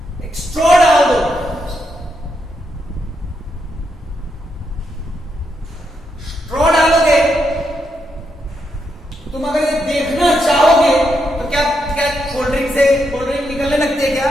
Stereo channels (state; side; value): normal; both; correlation 0.81